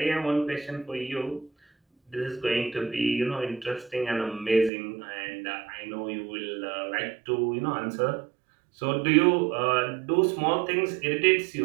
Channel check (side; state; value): left; drops out; at 4.7 s